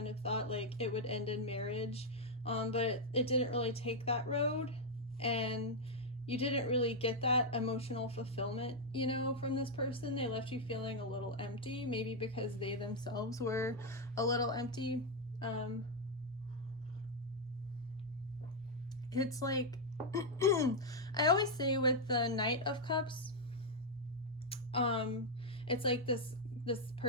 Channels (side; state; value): both; normal; correlation -0.01